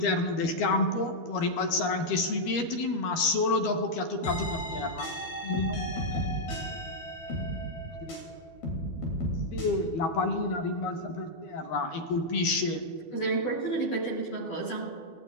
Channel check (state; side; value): late; right; 12 ms